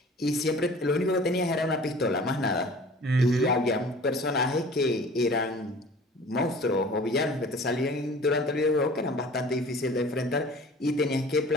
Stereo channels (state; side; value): normal; both; correlation 0.45